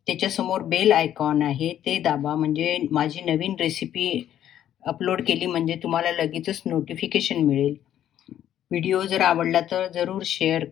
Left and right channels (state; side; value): quieter; right; 11.1 dB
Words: त्याच्यासमोर बेल आयकॉन आहे ते दाबा, म्हणजे माझी नवीन रेसिपी अपलोड केली म्हणजे तुम्हाला लगेचच नोटिफिकेशन मिळेल. व्हिडिओ जर आवडला तर जरूर शेअर